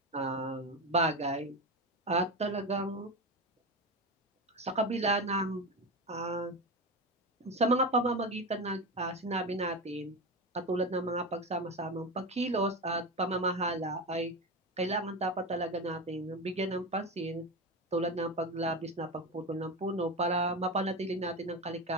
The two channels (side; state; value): both; normal; correlation 0.20